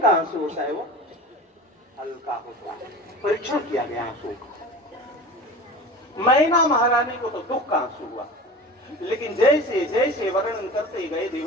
आंसू होता है वो हल्का होता है। परीक्षण किया गया आंसू का। मैना महारानी को तो दुख का आंसू हुआ, लेकिन जैसे जैसे वर्णन करते गए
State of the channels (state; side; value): normal; both; correlation 0.35